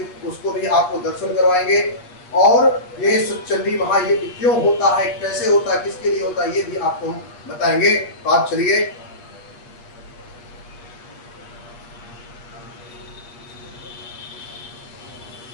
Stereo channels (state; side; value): late; right; 8.7 ms